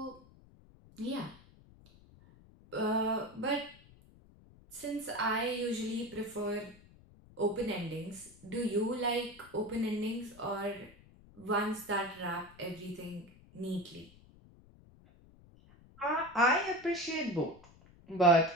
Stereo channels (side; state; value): left; noise; rumble, 24 dB below the sound